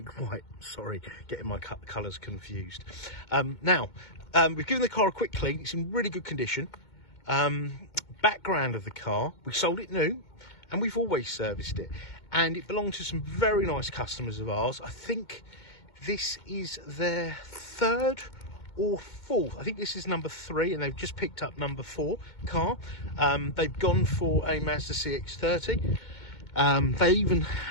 White, sorry, getting my colours confused. We've given the car a quick clean. It's in really good condition. Background of the car, we sold it new and we've always serviced it, and it belonged to some very nice customers of ours. I think this is their third or fourth, I think this is number 3, and they've just picked up number 4 car. They've gone for a Mazda CX-3. They even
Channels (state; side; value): late; right; 2.2 ms